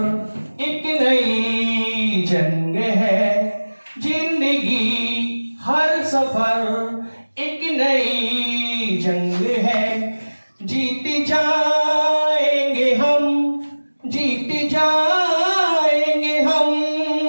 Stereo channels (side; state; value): both; inverted; correlation -1.00